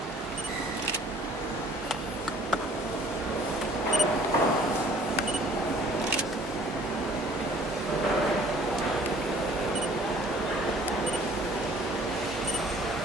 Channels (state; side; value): normal; both; correlation 0.53